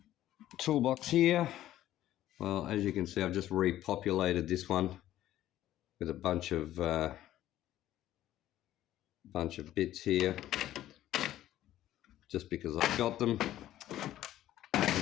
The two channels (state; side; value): quieter; right; 13.4 dB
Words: toolbox here, well, as you can see, I've just repopulated this one with a bunch of bits here, just because I've got them. I